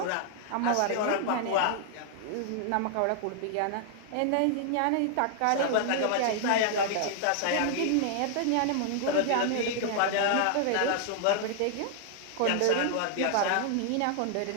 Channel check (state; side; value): different; both; correlation -0.01